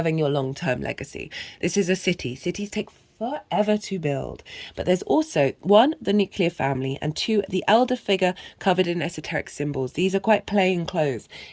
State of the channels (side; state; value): both; identical; correlation 1.00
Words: your long-term legacy. This is a city. Cities take forever to build. But there's also 1, the nuclear family, and 2, the elder figure covered in esoteric symbols. These are quite plain clothes.